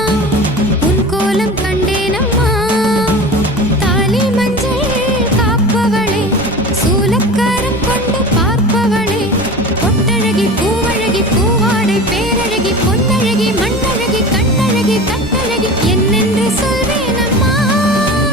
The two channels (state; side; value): normal; both; correlation 0.34